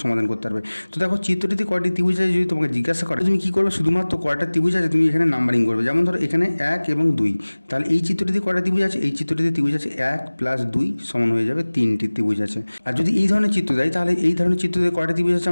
সমাধান করতে পারবে। তো দেখো, চিত্রটিতে কয়টি ত্রিভুজ আছে যদি তোমাকে জিজ্ঞাসা করে, তুমি কী করবে, শুধুমাত্র কয়টা ত্রিভুজ আছে তুমি এখানে নাম্বারিং করবে। যেমন ধরো এখানে 1 এবং 2, তাহলে এই চিত্রটিতে কয়টা ত্রিভুজ আছে, এই চিত্রটিতে ত্রিভুজ আছে 1 + 2 সমান হয়ে যাবে 3টি ত্রিভুজ আছে। আর যদি এই ধরনের চিত্র দেয়, তাহলে এই ধরনের চিত্রতে কয়টা ত্রিভুজ আছে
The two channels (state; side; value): inverted; both; correlation -1.00